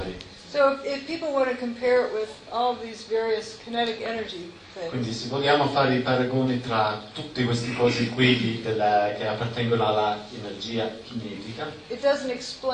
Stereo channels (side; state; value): both; identical; correlation 1.00